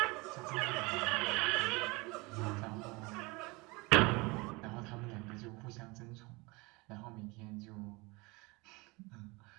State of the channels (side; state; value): left; quieter; 25.3 dB